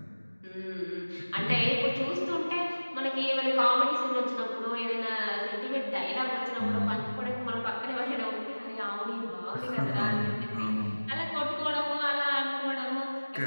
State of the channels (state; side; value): inverted; both; correlation -1.00